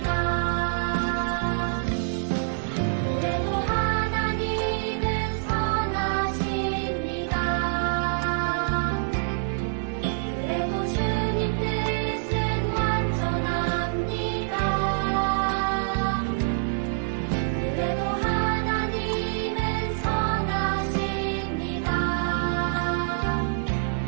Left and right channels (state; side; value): silent; left; digital silence